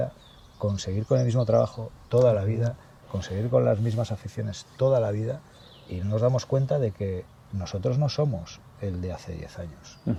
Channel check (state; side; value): identical; both; correlation 1.00